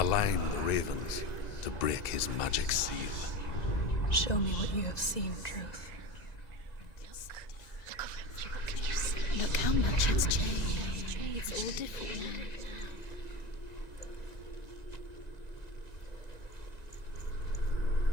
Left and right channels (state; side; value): late; right; 1.9 ms